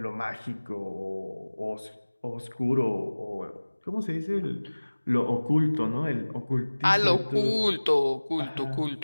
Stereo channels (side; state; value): both; inverted; correlation -1.00